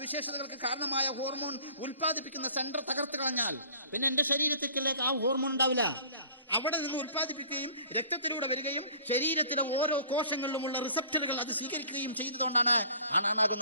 കാരണമായ ഹോർമോൺ ഉൽപ്പാദിപ്പിക്കുന്ന സെന്റർ തകർത്ത് കളഞ്ഞാൽ പിന്നെ എന്റെ ശരീരത്തിലേക്ക് ആ ഹോർമോൺ ഉണ്ടാവില്ല. അവിടെ നിന്ന് ഉൽപ്പാദിപ്പിക്കുകയും രക്തത്തിലൂടെ വരികയും ശരീരത്തിലെ ഓരോ കോശങ്ങളിലുമുള്ള റിസപ്റ്ററുകൾ അത് സ്വീകരിക്കുകയും ചെയ്തതുകൊണ്ടാണ്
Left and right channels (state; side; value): inverted; both; correlation -0.50